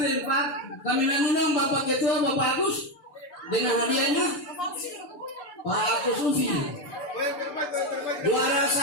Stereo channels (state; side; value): late; right; 6.8 ms